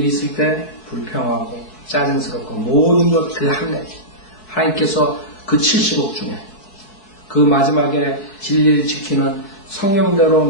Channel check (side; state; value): right; late; 4.6 ms